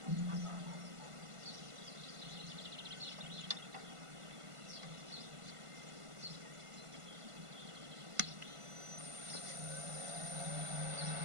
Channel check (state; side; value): late; left; 1.5 ms